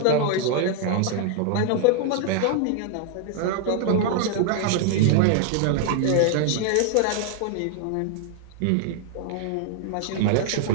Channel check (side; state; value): both; different; correlation 0.00